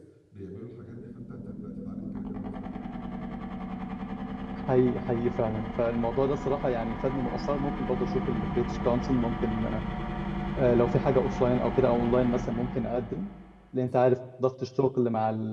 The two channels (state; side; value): identical; both; correlation 1.00